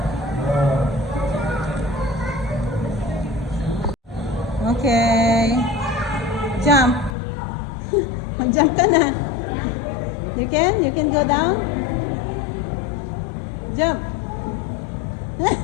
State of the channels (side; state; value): right; drops out; at 7.1 s